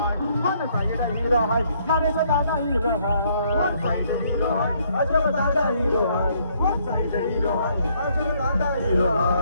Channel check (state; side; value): inverted; both; correlation -0.68